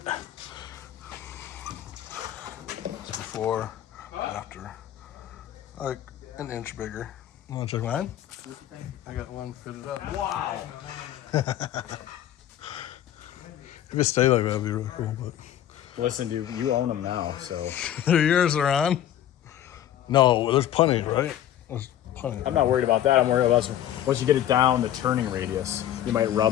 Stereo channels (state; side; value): quieter; right; 11.4 dB